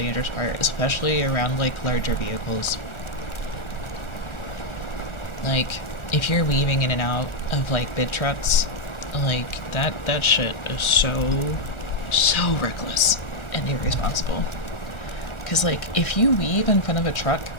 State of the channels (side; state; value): right; late; 1.4 ms